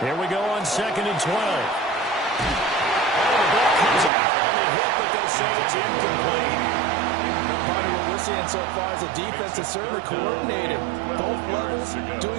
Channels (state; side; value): drops out; left; at 4.1 s